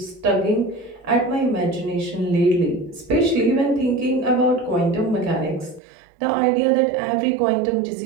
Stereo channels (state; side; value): drops out; left; at 5.8 s